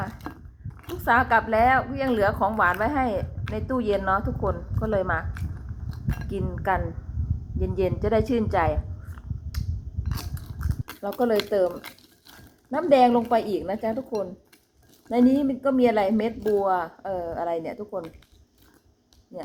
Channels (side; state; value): both; identical; correlation 1.00